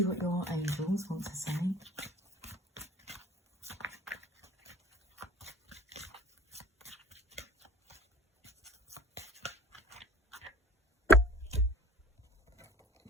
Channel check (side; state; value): both; normal; correlation 0.50